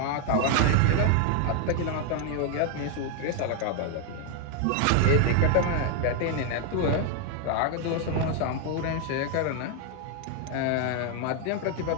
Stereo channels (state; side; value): different; both; correlation 0.00